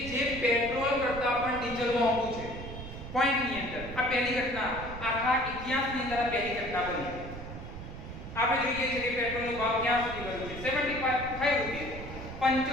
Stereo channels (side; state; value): right; noise; rumble, 10 dB below the sound